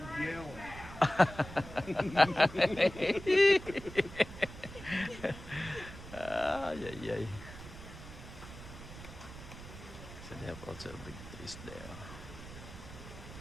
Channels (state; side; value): noise; right; rumble, 14 dB below the sound